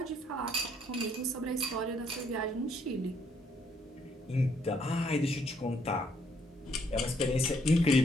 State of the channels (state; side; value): normal; both; correlation 0.69